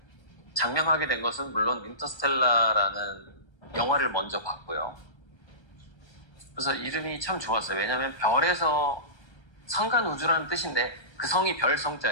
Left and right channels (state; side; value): late; right; 1.3 ms